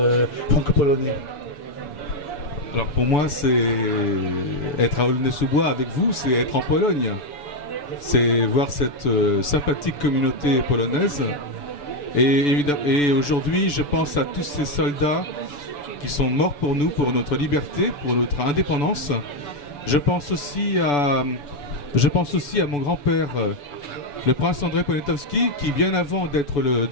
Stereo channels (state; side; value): late; right; 6.9 ms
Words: franco-polonais ? Alors pour moi, c'est être à Aulnay-sous-Bois avec vous, c'est être en Pologne. C'est voir cette sympathique communauté polonaise. Et aujourd'hui, je pense à tous ces soldats qui sont morts pour nous, pour notre liberté, pour notre indépendance. Je pense aussi à mon grand-père, le prince André Poniatowski, qui bien avant d'être le